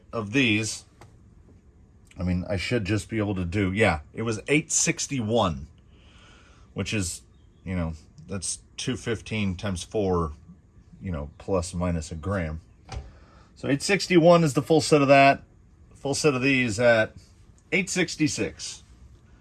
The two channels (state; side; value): identical; both; correlation 1.00